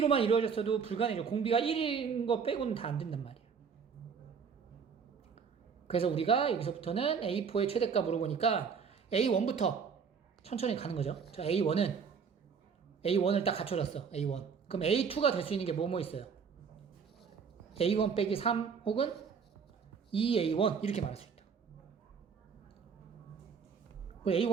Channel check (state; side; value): quieter; left; 6.2 dB